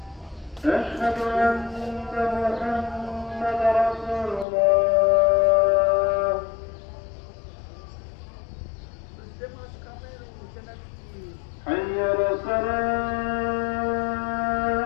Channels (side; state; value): right; drops out; at 4.5 s